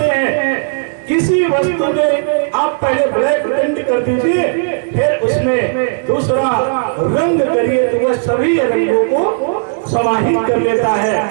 हैं, किसी वस्तु में आप पहले ब्लैक पेंट कर दीजिए, फिर उसमें दूसरा रंग करिए तो वह सभी रंगों को समाहित कर लेता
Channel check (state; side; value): silent; left; digital silence